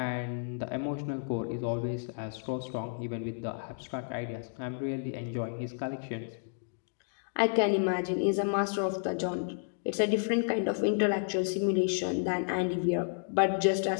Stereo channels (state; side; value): silent; right; digital silence